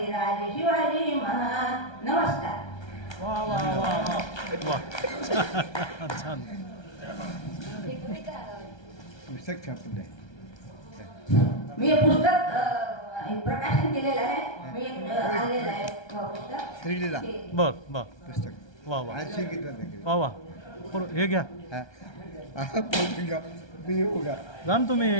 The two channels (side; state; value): right; late; 1.3 ms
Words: राजे शिवाजी महान. नमस्कार. वा वा वा वा छान. पुस्तक छापलं आहे. मी हे पुस्तक प्रकाशन केलेलं आहे. मी आणलेलं आहे पुस्तक. श्रीलीला बर बर पुस्तक वा वा आज शिकितलं वा वा. हे घ्या मी येऊ का जा ना